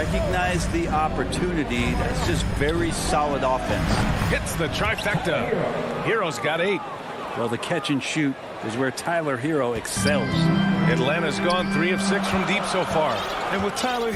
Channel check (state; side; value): identical; both; correlation 1.00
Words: the opportunity. That's just very solid offense. Hits the trifecta. Hero's got 8. Well, the catch and shoot is where Tyler Hero excels. Atlanta's gone 3 of 6 from deep so far. And with Tyler